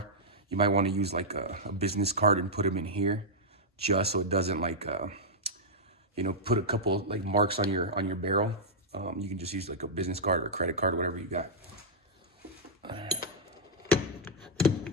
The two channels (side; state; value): both; normal; correlation -0.09